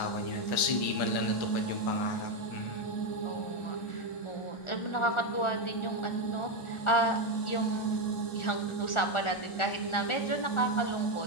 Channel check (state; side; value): late; right; 1.4 ms